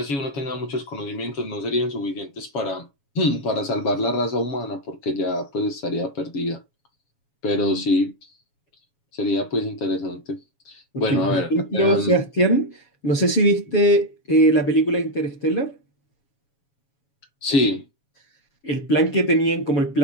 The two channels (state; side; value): late; right; 7.2 ms